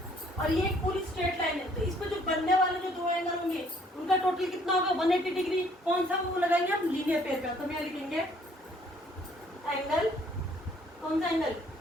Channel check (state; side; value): normal; both; correlation 0.62